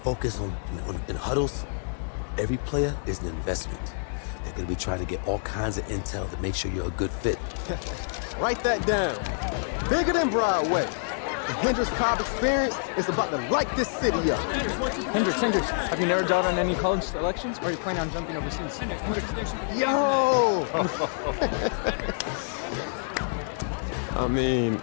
in huddles. Every player is an investment. They're going to be trying to get all kinds of intel to make sure you're a good fit. Write that down. Bigger than Broadway. The Hendricks Cobb experience is about to light this city up. Hendricks, have you narrowed down on any college selections, or are you planning on jumping overseas? Hendricks. Yo! I mean,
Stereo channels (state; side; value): silent; right; digital silence